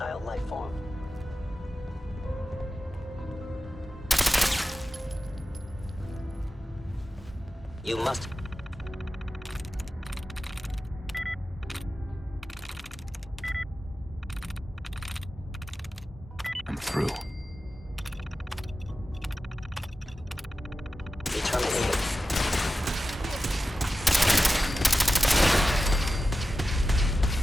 life form. You must... I'm through. Be terminated.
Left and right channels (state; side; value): normal; both; correlation 0.93